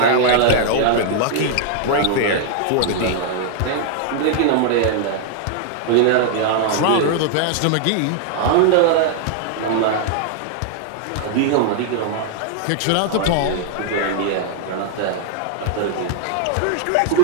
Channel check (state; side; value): different; both; correlation 0.00